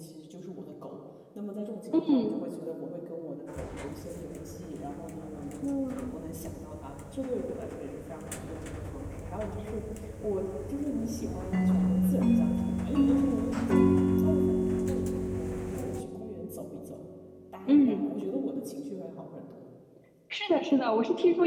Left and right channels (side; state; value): both; identical; correlation 1.00